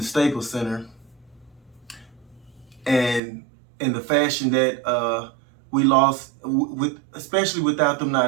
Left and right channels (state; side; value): drops out; left; at 3.2 s